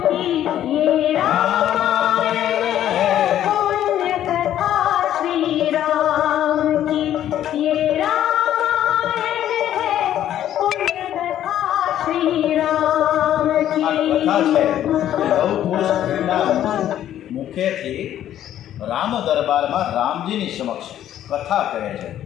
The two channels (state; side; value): quieter; right; 11.5 dB